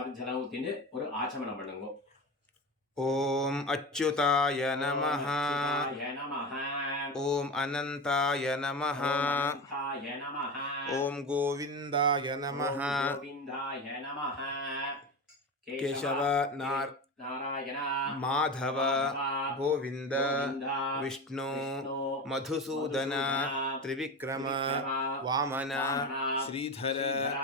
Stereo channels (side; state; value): both; normal; correlation 0.25